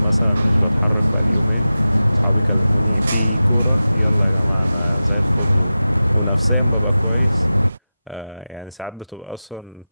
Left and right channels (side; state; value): both; inverted; correlation -0.94